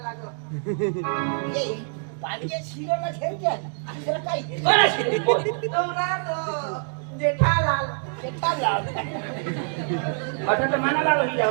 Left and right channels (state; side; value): silent; left; digital silence